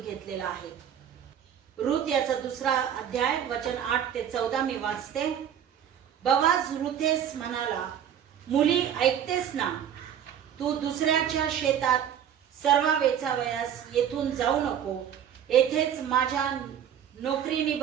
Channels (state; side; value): quieter; left; 9.3 dB